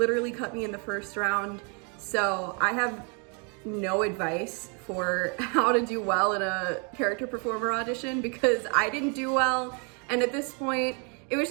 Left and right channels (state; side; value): quieter; left; 36.8 dB